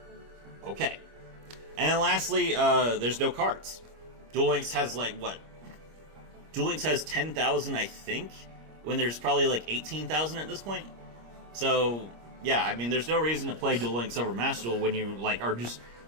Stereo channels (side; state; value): left; late; 25 ms